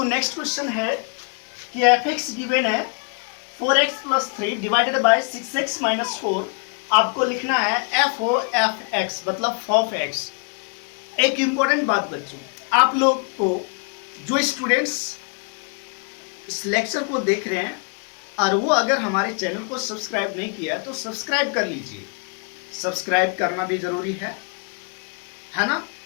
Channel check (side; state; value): right; quieter; 37.3 dB